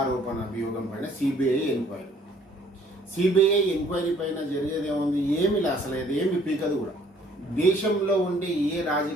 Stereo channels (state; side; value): normal; both; correlation 0.59